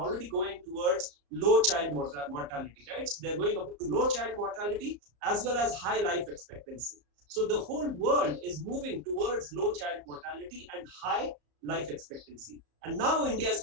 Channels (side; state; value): left; late; 34 ms